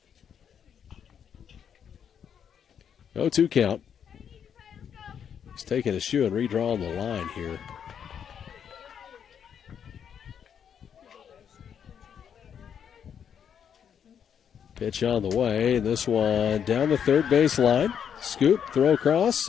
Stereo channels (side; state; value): right; quieter; 8.1 dB